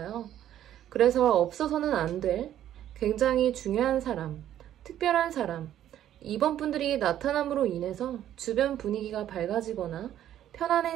그래서 없어서는 안 될 굉장히 중요한 사람, 특별한 사람, 이번 분들이 나타남으로 인해서 주변 분위기가 밝아지거나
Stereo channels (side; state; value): left; quieter; 11.5 dB